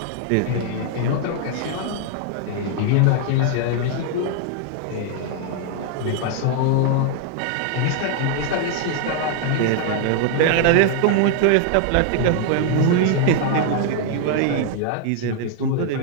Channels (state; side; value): different; both; correlation 0.00